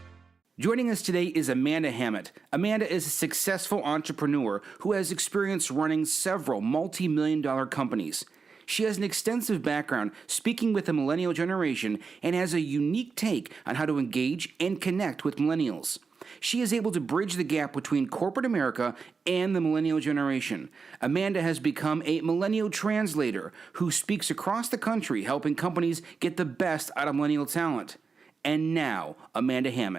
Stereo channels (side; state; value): left; quieter; 5.0 dB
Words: Joining us today is Amanda Hammett. Amanda is a successful entrepreneur who has experience running several multi-million-dollar companies. She has an extensive background speaking with the millennial generation and has a unique take on how to engage and connect with millennials. She is able to bridge the gap between corporate America and the millennial generation. Amanda has become a Millennial Translator who speaks across the country helping companies get the best out of millennial talent. And now, Amanda